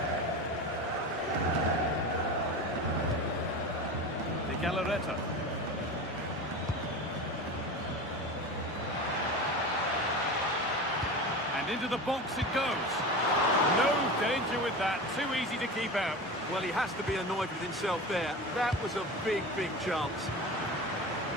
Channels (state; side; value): normal; both; correlation 0.29